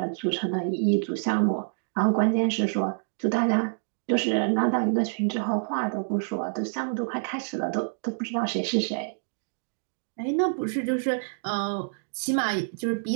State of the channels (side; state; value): left; silent; digital silence